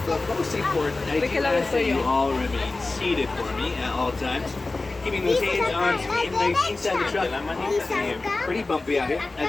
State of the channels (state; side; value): quieter; right; 3.3 dB